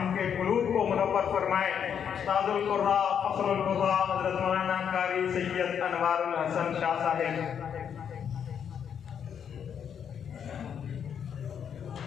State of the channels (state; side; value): quieter; right; 8.0 dB